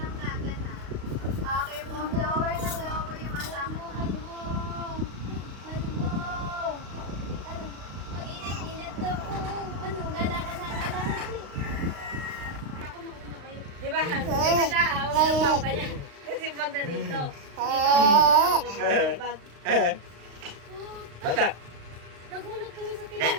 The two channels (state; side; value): late; left; 35 ms